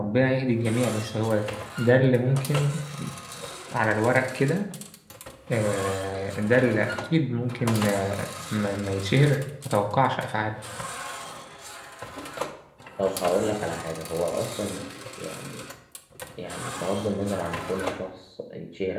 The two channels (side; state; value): both; identical; correlation 1.00